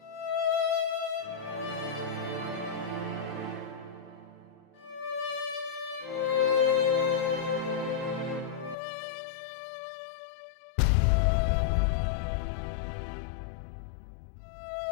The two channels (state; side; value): drops out; right; at 8.8 s